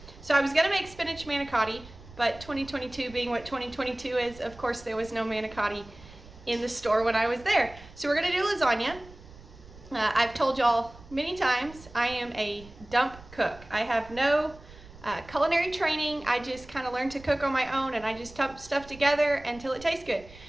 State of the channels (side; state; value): right; noise; rumble, 20 dB below the sound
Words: So I was going to make spinach manicotti, but 2022 being what 2022 is, of course there was no manicotti in the store when I was there. So we're going to do lasagna. I've told y'all many times I am a dump cook. I have no culinary training. I just kind of learned to cook on my own, and I just dump stuff together until it tastes good.